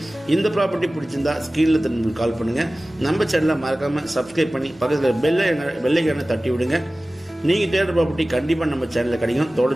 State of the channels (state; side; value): normal; both; correlation 0.97